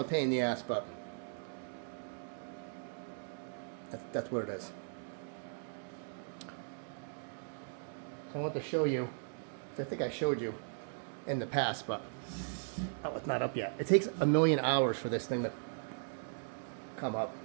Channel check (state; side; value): silent; left; digital silence